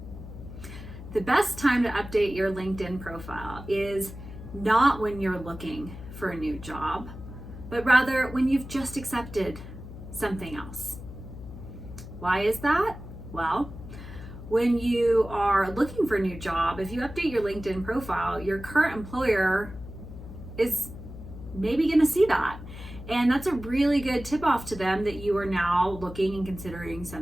The best time to update your LinkedIn profile is not when you're looking for a new job, but rather when you've just accepted something else. Why is that? Well, when you are looking for a new job, if you update your LinkedIn profile, your current employer is maybe going to see that. And that's a really good tip off to them that you are now looking and considering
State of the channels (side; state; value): left; noise; hum, 12 dB below the sound